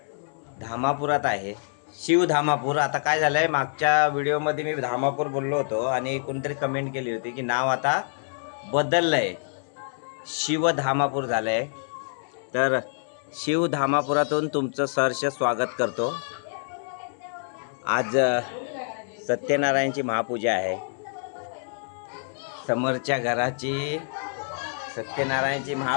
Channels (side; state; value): right; silent; digital silence